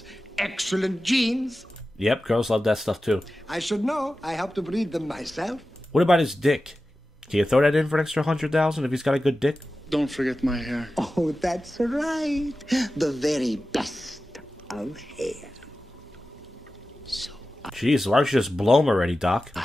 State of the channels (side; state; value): both; normal; correlation 0.94